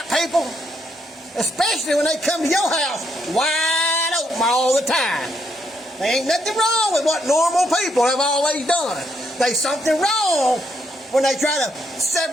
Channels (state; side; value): normal; both; correlation 0.75